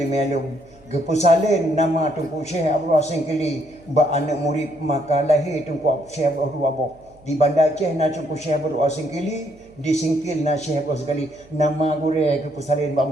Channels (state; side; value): noise; right; hum, 28 dB below the sound